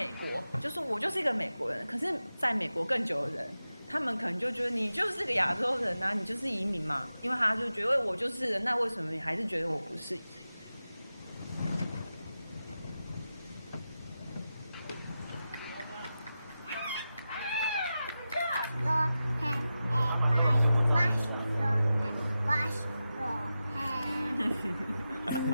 国，就是我就是一个美国人，可是在美国更久的人，他们可能就觉得你就是个亚洲人啊，你就是移民嘛，因为他就觉得我就是人，那为什么你还是觉得我不是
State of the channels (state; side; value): inverted; both; correlation -0.92